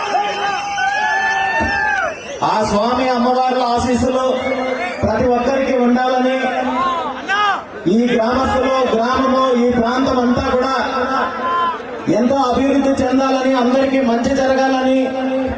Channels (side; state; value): both; identical; correlation 1.00